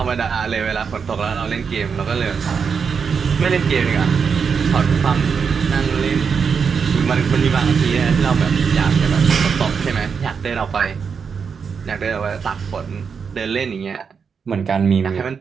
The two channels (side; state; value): left; quieter; 6.1 dB